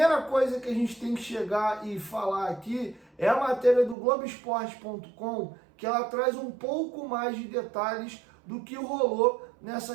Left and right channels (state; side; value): drops out; left; at 4.0 s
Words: coisa que a gente tem que chegar e falar aqui é a matéria do Globoesporte.com, que ela traz um pouco mais de detalhes do que rolou